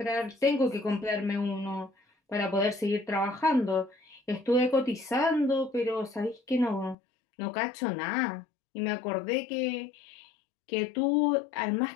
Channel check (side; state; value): right; drops out; at 7.0 s